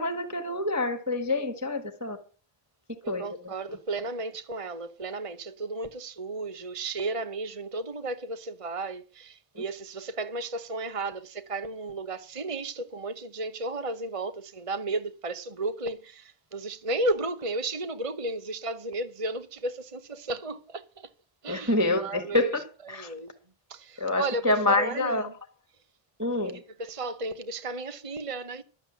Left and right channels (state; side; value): late; left; 1.5 ms